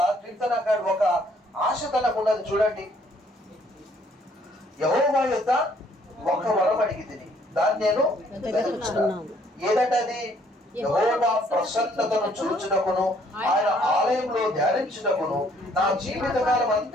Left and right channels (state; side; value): normal; both; correlation 0.64